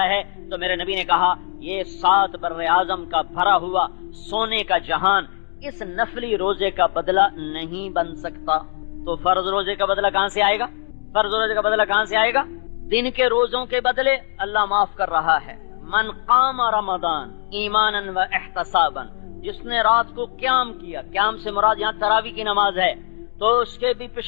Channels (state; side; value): silent; right; 65 dB below the other